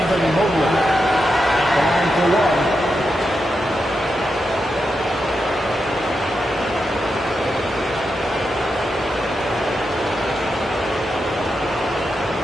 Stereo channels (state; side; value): normal; both; correlation 0.87